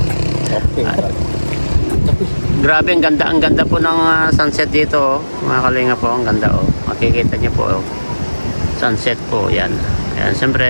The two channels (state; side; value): inverted; both; correlation -1.00